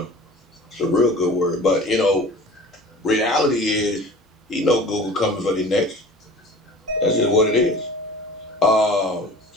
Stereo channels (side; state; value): both; normal; correlation 0.42